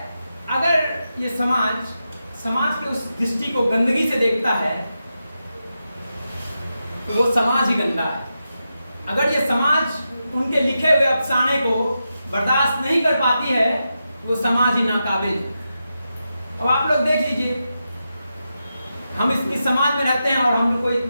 अगर ये समाज के उस दृष्टि को गंदगी से देखता है तो वो समाज ही गंदा है। अगर ये समाज उनके लिखे हुए अफसाने को बर्दाश्त नहीं कर पाती है वो समाज ही नाकाबिल है। अब आप लोग देख लीजिए, हम इस समाज में रहते हैं और हम लोग को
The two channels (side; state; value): both; inverted; correlation -0.88